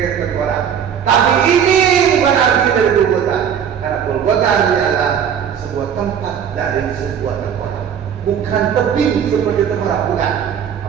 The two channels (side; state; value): left; quieter; 8.3 dB